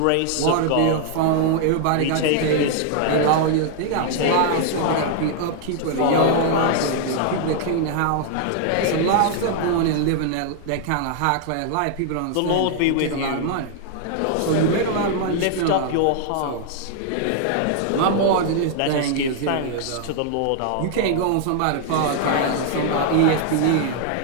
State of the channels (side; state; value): both; different; correlation 0.00